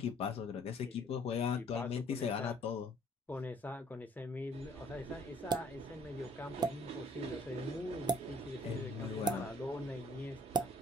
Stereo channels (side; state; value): both; normal; correlation 0.59